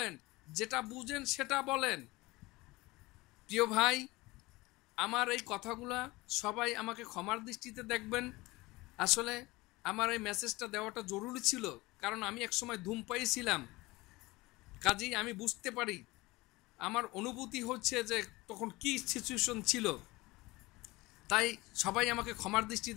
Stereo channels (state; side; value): quieter; right; 21.5 dB